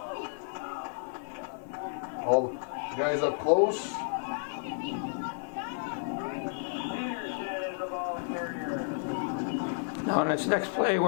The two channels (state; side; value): silent; right; digital silence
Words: All the guys up close. Now in this next play,